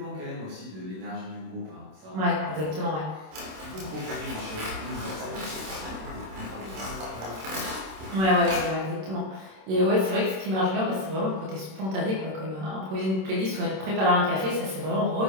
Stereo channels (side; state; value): left; late; 26 ms